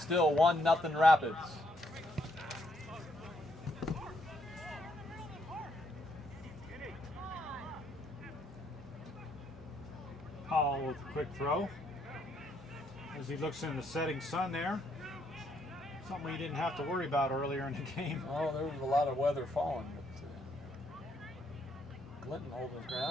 1-0 Rapids. Powell with a quick throw. As he looks in the setting sun there. Something he didn't have to worry about earlier in the game. Oh, there was a lot of weather falling, but Clinton holding his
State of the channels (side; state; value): both; normal; correlation 0.73